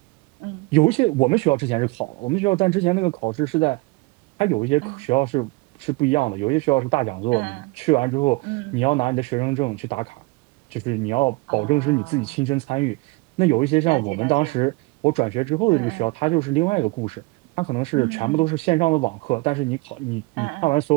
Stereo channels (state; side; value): quieter; left; 25.2 dB